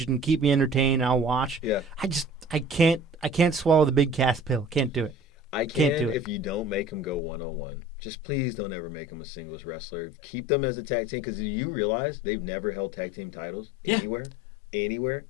and keep me entertained. I'll watch. Yeah. I can't swallow the Big Cass pill. Can't do it. I can't do it. If you don't make him go 1-on-1. Just please don't ever make them a singles wrestler. Keep them as a tag team, because you realize they've never held tag team titles anywhere,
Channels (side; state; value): right; drops out; at 7.2 s